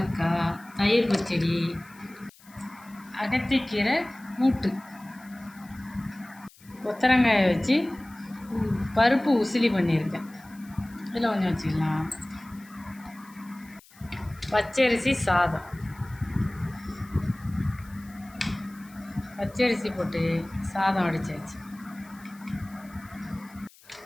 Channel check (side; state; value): left; noise; hiss, 25 dB below the sound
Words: தயிர் பச்சடி, அகத்திக்கீரை கூட்டு, கொத்தரங்காயை வச்சு பருப்பு உசிலி பண்ணியிருக்கேன். இதில் கொஞ்சம் வச்சுக்கலாம். பச்சரிசி சாதம், பச்சரிசி போட்டு சாதம் வடிச்சாச்சு.